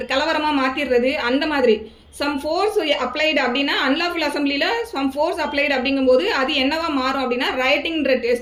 கலவரமாக மாற்றிடுறது, அந்த மாதிரி சம் ஃபோர்ஸ் அப்ளைடு அப்படின்னா அன்லாஃபுல் அசம்பிளியில் சம் ஃபோர்ஸ் அப்ளைடு அப்படிங்கும்போது அது என்னவா மாறும் அப்படின்னா ரைட்டிங்ன்ற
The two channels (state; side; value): identical; both; correlation 1.00